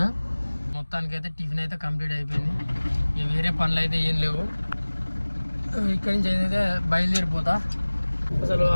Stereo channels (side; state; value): both; inverted; correlation -1.00